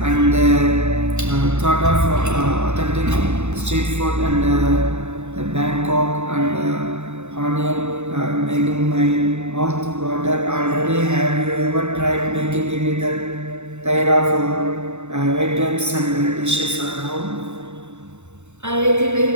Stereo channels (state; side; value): late; left; 0.82 ms